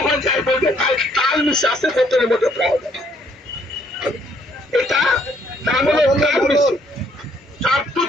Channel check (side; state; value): both; normal; correlation 0.66